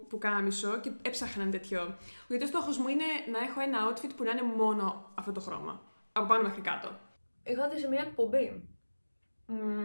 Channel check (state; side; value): inverted; both; correlation -1.00